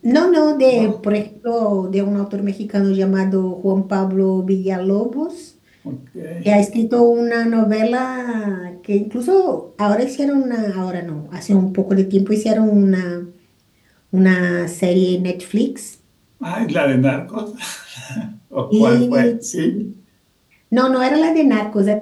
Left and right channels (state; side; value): identical; both; correlation 1.00